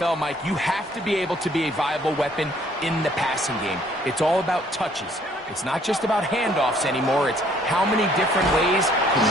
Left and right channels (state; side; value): normal; both; correlation 0.62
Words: Mike, you have to be able to be a viable weapon in the passing game. It's all about touches. It's not just about handoffs anymore. It's how many different ways